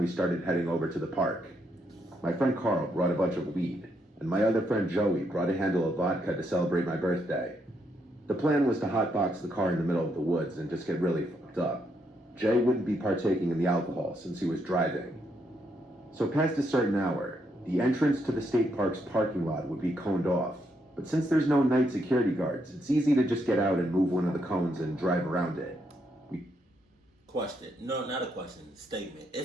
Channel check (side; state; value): both; normal; correlation 0.77